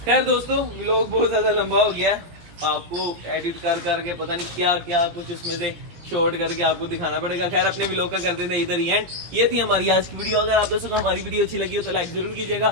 खैर दोस्तों व्लॉग बहुत ज्यादा लंबा हो गया है, आपको एडिट कर करके पता नहीं क्या क्या कुछ उसमें से शॉर्ट करके आपको दिखाना पड़ेगा। खैर अपने व्लॉग का करते थे इधर ही एंड। ये थी हमारी आज की वीडियो। अगर आप दोस्तों को हमारी वीडियो अच्छी लगी हो तो लाइक जरूर कीजिएगा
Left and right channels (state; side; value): late; left; 17 ms